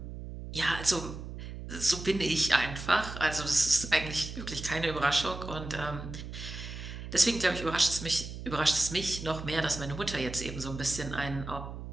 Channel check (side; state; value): right; noise; hum, 9 dB below the sound